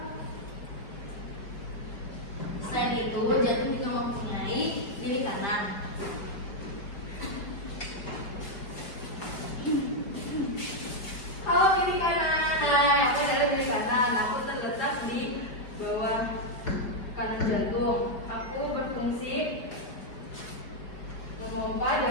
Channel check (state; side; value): late; right; 5.3 ms